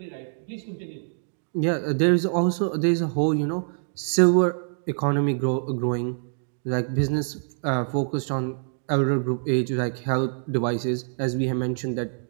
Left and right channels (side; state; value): left; silent; digital silence